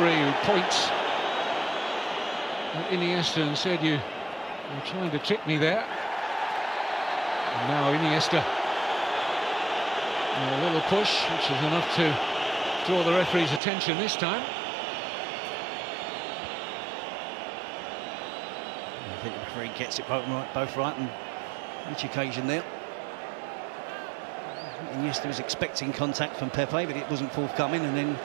who points at Iniesta and said, you're trying to trick me there. And now Iniesta. A little push, which is enough to draw the referee's attention this time. I think the referee gets it both right on each occasion there. Iniesta was expecting contact from Pepe, but it wasn't forthcoming, and then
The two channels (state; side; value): drops out; left; at 13.6 s